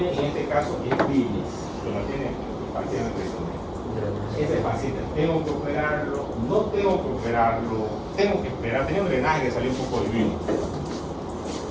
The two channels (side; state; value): both; identical; correlation 1.00